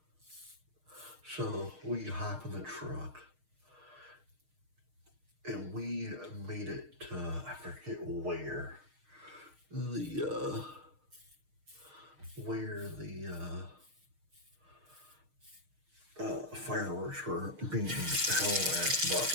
so we hop in the truck and we made it to, I forget where the fireworks were being held at, but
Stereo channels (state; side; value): late; left; 6.5 ms